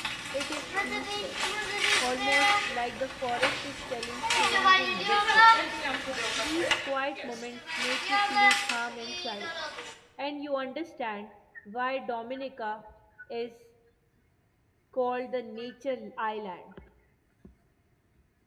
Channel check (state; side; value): identical; both; correlation 1.00